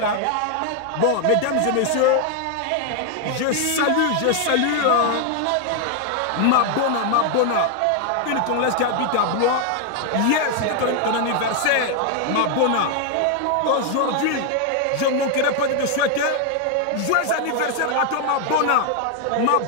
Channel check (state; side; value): different; both; correlation 0.00